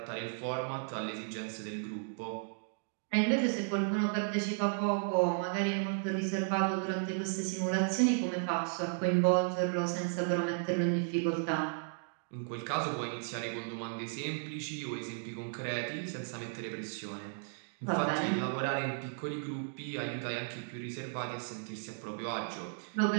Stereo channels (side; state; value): left; silent; digital silence